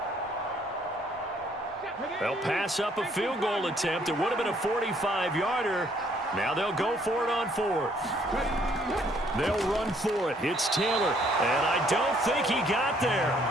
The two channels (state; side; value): normal; both; correlation 0.65